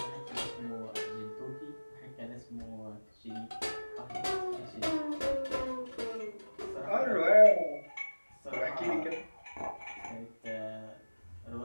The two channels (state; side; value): inverted; both; correlation -1.00